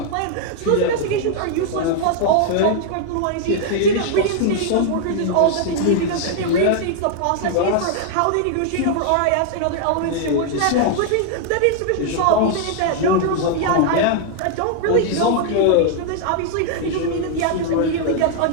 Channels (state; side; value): different; both; correlation 0.00